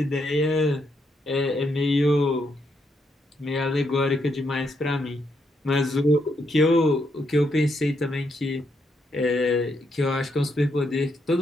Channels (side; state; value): both; normal; correlation 0.78